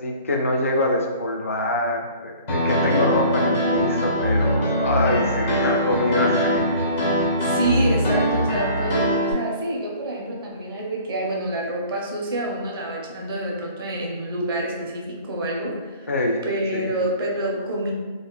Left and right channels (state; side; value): inverted; both; correlation -0.48